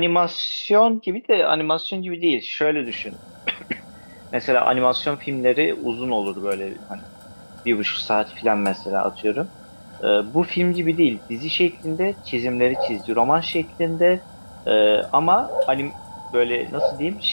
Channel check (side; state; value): both; inverted; correlation -1.00